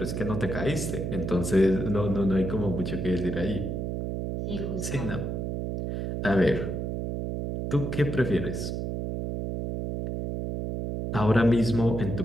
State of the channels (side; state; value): right; noise; hum, 3 dB below the sound